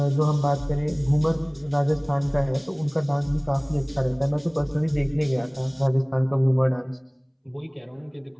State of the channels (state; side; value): identical; both; correlation 1.00